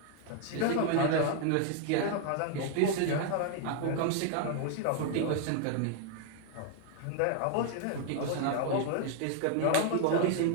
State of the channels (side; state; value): both; different; correlation 0.00